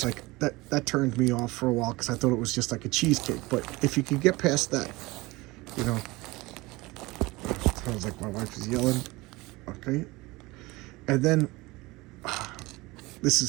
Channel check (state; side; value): quieter; left; 21.8 dB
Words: like that turned me off for a while because I thought it was just like a cheesecake. But if you could get past that, you know, sounds like my wife is yelling. Okay, and then this